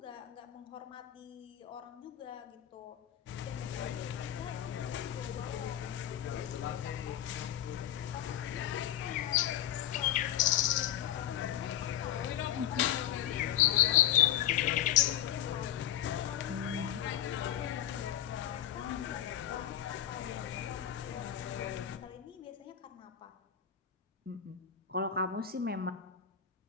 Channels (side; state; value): right; quieter; 11.3 dB